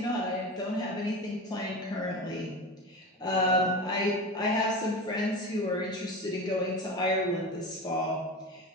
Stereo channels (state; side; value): normal; both; correlation 0.28